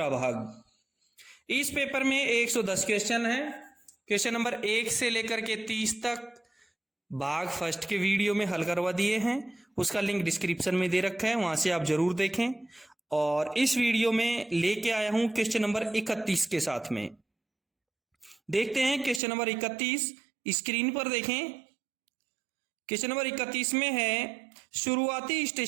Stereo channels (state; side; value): drops out; left; at 19.2 s